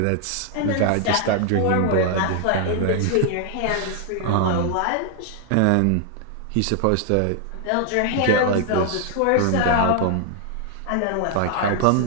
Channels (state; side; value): different; both; correlation 0.00